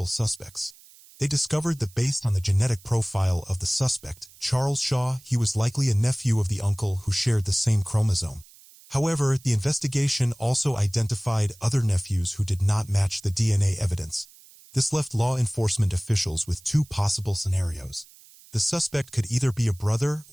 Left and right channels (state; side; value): noise; right; hiss, 24 dB below the sound